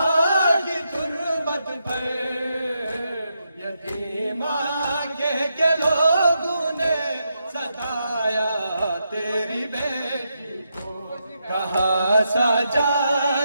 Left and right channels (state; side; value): inverted; both; correlation -0.83